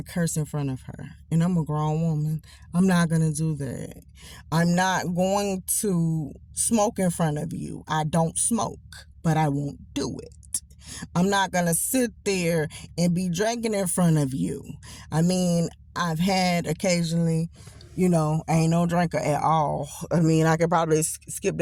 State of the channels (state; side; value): identical; both; correlation 1.00